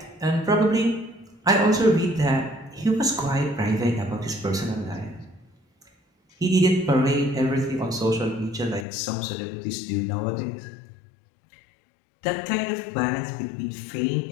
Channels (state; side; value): drops out; right; at 8.8 s